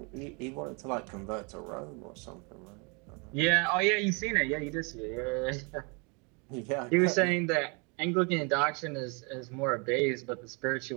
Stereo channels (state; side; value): quieter; left; 32.5 dB